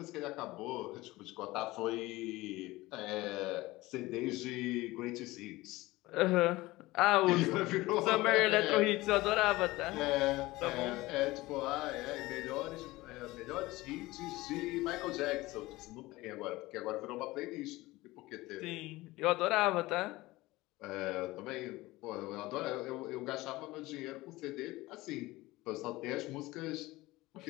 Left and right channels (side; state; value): right; quieter; 19.5 dB